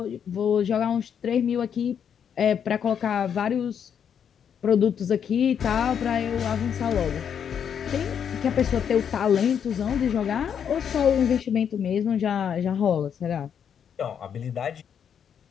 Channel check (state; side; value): quieter; right; 8.0 dB